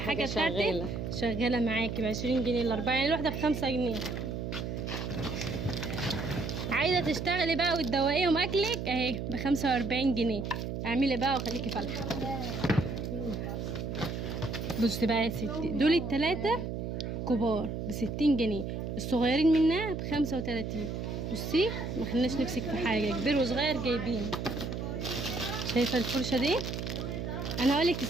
بتاعتك شغاله معاكي ب20 جنيه الاربعه، يعني الواحده ب5 جنيه. عايزه تشتغلي بقى وتدوقيهم اكلك اهي ب45 جنيه. اعملي بقى وخليكي فالحه. بصي بقى يا ستي، دول التلاتة كبار ب60 جنيه، الصغيرين منها ب35. بصي ما خلناش نمسك في حاجه، كبير وصغير جايبين. شايفه الفرشه دي؟ انا هقولك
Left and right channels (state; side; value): noise; right; hum, 4 dB below the sound